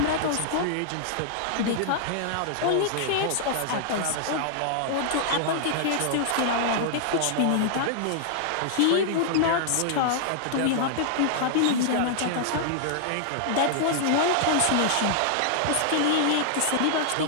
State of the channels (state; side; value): different; both; correlation -0.01